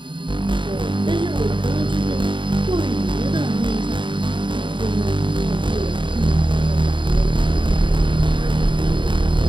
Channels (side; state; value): left; late; 0.23 ms